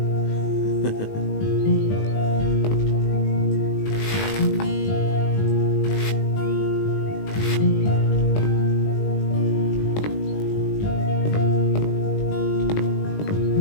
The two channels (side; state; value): right; late; 19 ms